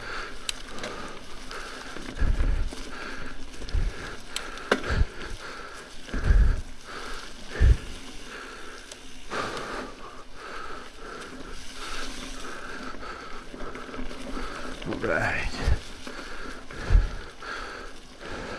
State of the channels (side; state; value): both; identical; correlation 1.00